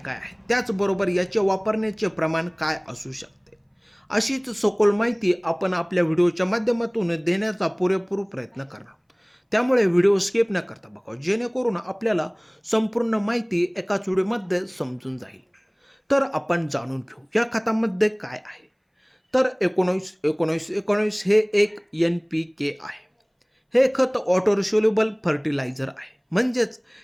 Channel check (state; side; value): identical; both; correlation 1.00